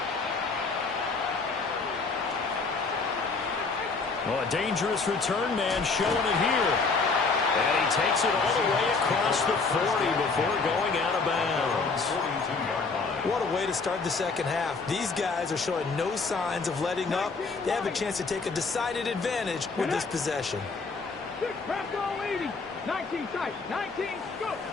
Well, a dangerous return man showing it here. And he takes it all the way across the 40 before going out of bounds. What a way to start the second half. These guys are showing no signs of letting up. They have a chance to take a decided advantage with this possession. 19 tight, 19 scoop.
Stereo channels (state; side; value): quieter; right; 4.3 dB